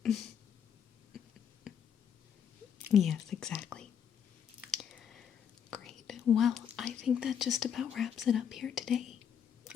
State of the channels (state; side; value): quieter; right; 8.2 dB